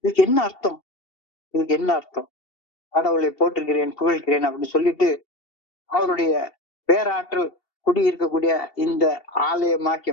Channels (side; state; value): right; late; 2.7 ms